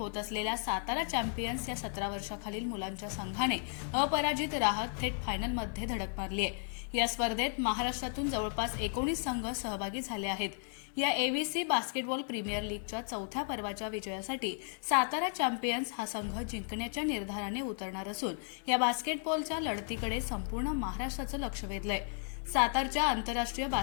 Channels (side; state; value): right; silent; 55 dB below the other